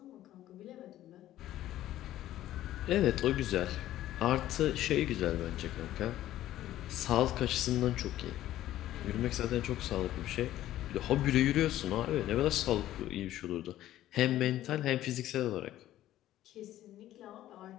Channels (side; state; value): right; quieter; 13.6 dB